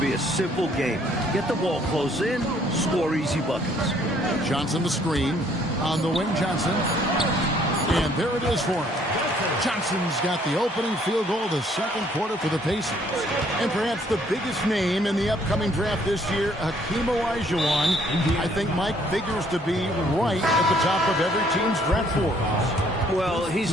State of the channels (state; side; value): normal; both; correlation 0.63